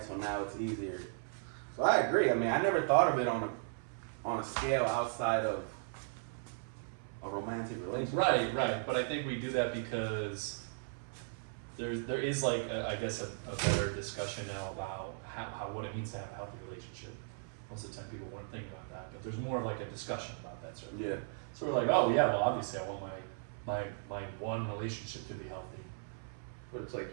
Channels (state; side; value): silent; left; 53 dB below the other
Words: So now it's easier. So I agree. I mean, I never thought of it on a scale outside of a romantic relationship. Right. But I think we do that because there is like I guess a better discussion now about how what it means to have a healthy relationship. Most of the time people weren't thinking about that, but there's more of like a discussion about that sort of thing. Yeah. So we're like, oh yeah, well obviously I want my one relationship to be healthy. But it's